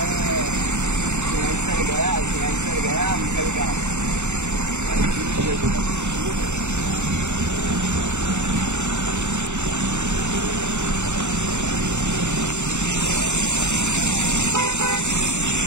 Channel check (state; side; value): late; left; 0.83 ms